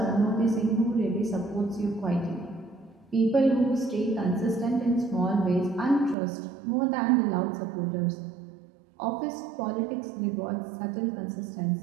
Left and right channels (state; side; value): drops out; left; at 6.2 s